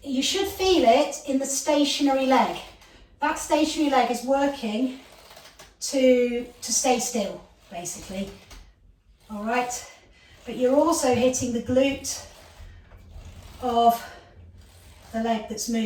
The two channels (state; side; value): identical; both; correlation 1.00